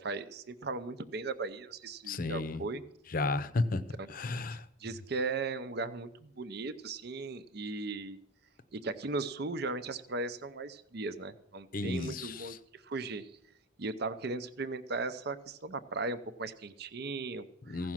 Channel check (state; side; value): normal; both; correlation 0.27